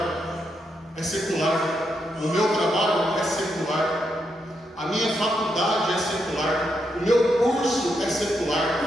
é secular, o meu trabalho é secular, a minha faculdade é secular, o meu curso é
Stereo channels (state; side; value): normal; both; correlation 0.81